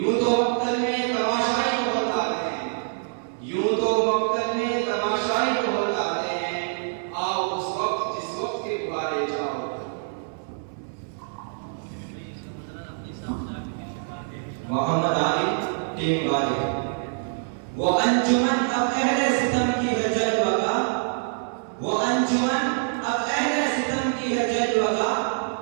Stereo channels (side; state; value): left; silent; 61 dB below the other